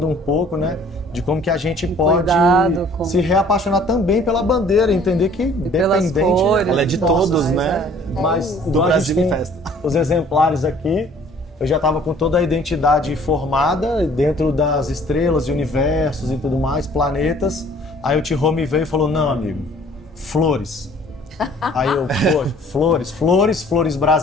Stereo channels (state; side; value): normal; both; correlation 0.55